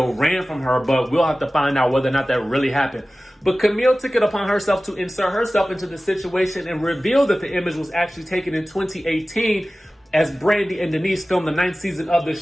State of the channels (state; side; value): normal; both; correlation 0.97